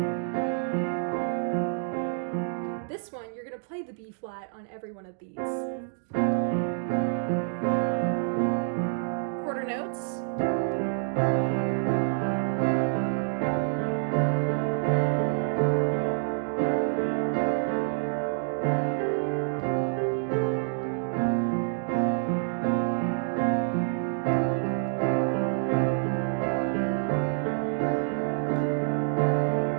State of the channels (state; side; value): silent; left; digital silence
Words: this one you're going to play the B flat on every one of these. Quarter notes.